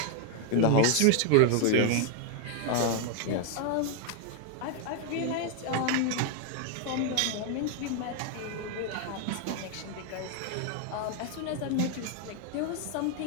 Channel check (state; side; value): different; both; correlation 0.01